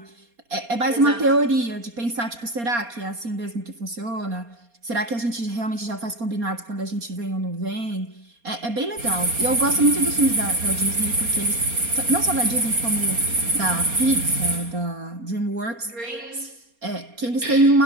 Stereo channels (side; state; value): left; late; 4.3 ms